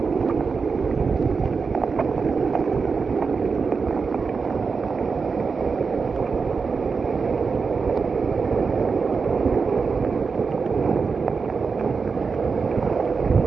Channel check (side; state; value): left; quieter; 5.0 dB